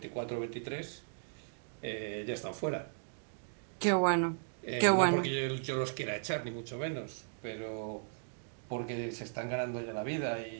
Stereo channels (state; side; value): silent; left; digital silence